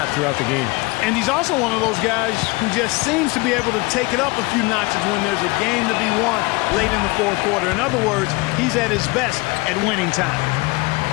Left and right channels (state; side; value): quieter; right; 25.0 dB